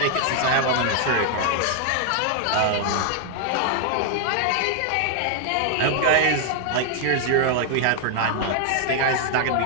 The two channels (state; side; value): different; both; correlation 0.00